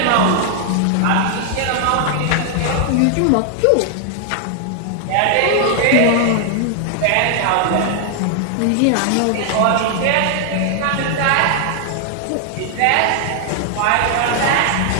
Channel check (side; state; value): both; different; correlation 0.00